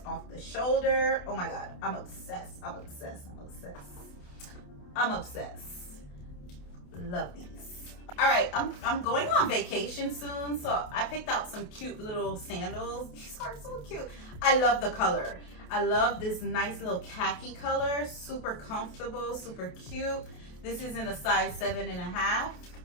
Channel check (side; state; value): right; late; 28 ms